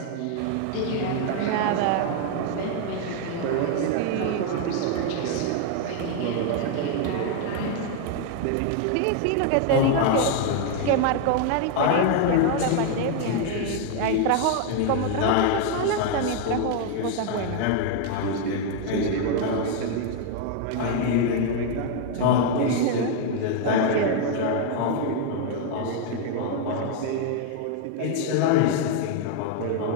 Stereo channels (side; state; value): both; different; correlation 0.00